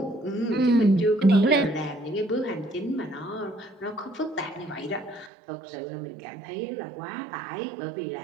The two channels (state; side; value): drops out; left; at 5.3 s